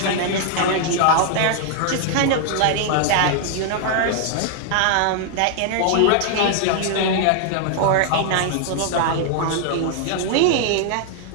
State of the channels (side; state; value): both; different; correlation 0.00